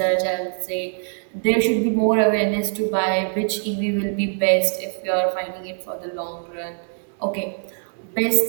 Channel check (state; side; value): silent; left; 64 dB below the other